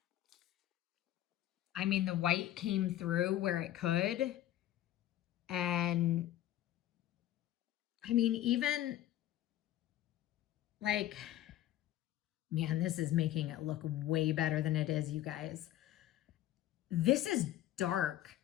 I mean, the white came through where it could. And I mean, even like, man, this is making it look way better than it is, you guys. This is dark.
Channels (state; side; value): quieter; right; 13.1 dB